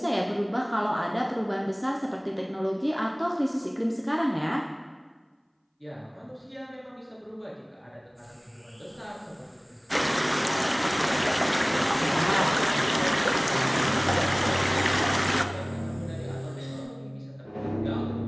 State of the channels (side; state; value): both; identical; correlation 1.00